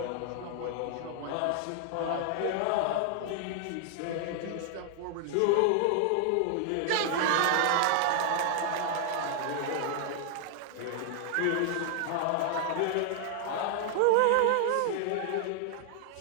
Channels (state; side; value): different; both; correlation 0.00